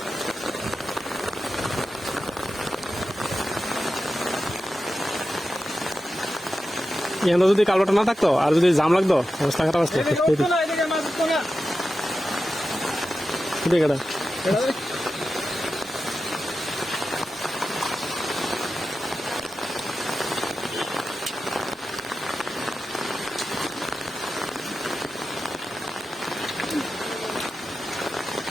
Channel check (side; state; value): both; normal; correlation 0.92